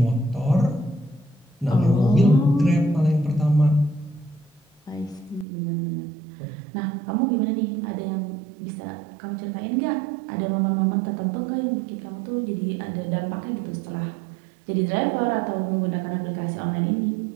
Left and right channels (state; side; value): drops out; left; at 5.5 s